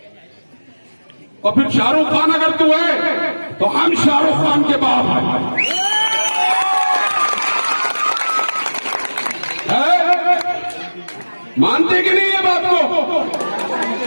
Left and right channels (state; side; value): inverted; both; correlation -1.00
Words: और फिर शाहरुख खान अगर तू है तो हम शाहरुख खान के बाप हैं। मानते कि नहीं है बात को?